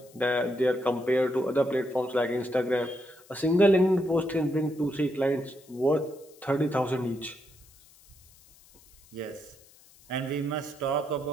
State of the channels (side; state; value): left; noise; hiss, 26 dB below the sound